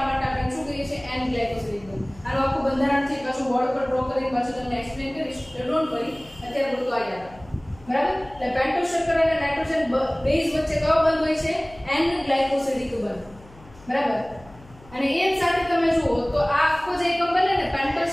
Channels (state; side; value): noise; left; hum, 23 dB below the sound